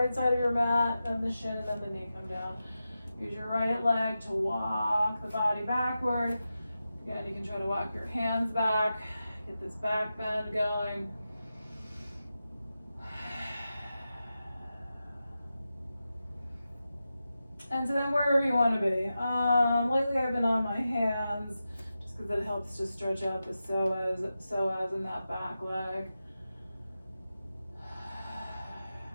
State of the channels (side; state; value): both; inverted; correlation -0.91